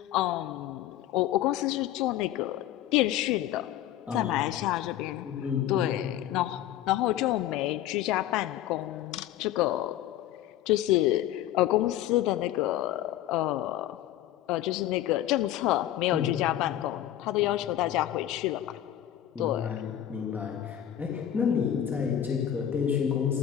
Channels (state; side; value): quieter; right; 12.2 dB